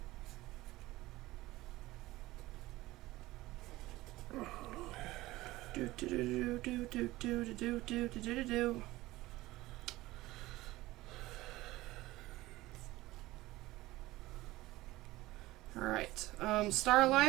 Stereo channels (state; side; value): quieter; left; 18.3 dB